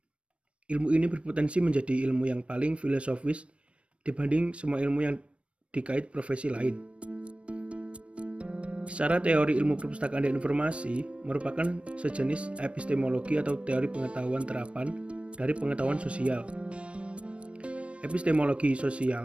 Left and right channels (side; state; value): left; late; 0.061 ms